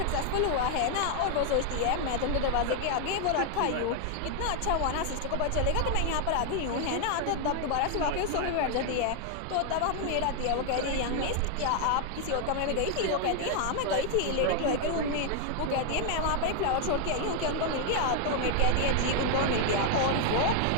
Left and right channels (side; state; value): both; different; correlation 0.00